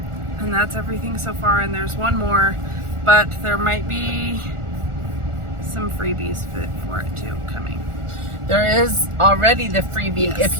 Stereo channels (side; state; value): left; late; 1.4 ms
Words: And that's everything so far, and there's one more, but there might be some freebies for it too coming. There is already the freebie if